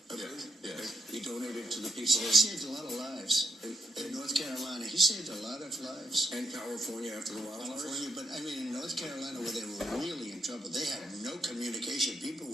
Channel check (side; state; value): both; normal; correlation 0.77